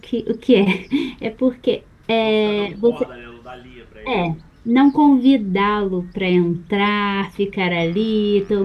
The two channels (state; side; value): identical; both; correlation 1.00